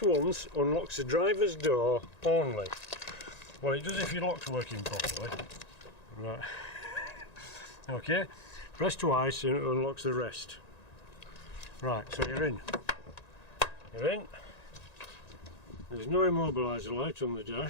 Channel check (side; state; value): right; late; 1.9 ms